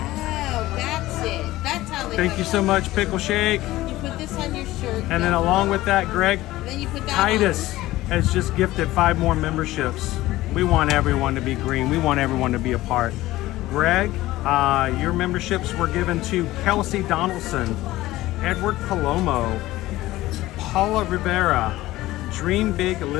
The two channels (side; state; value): right; quieter; 16.9 dB